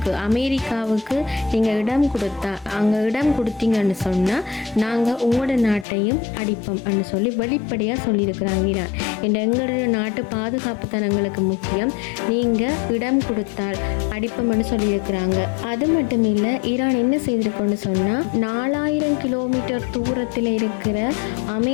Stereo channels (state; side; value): drops out; right; at 5.9 s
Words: அமெரிக்காவுக்கு நீங்கள் இடம் கொடுத்தீங்கன்னு சொன்னால் நாங்கள் உங்களோட நாட்டையும் அடிப்போம்னு சொல்லி வெளிப்படையாக சொல்லியிருக்கிறாங்க ஈரான். எங்களுடைய நாட்டு பாதுகாப்பு தான் எங்களுக்கு முக்கியம், நீங்கள் இடம் கொடுத்தால் அடிப்போம்னு சொல்லியிருக்கிறாங்க. அது மட்டும் இல்லை, ஈரான் என்ன செய்திருக்கோன்னு சொன்னால் 4,000 கிலோமீட்டர் தூரத்தில் இருக்கிற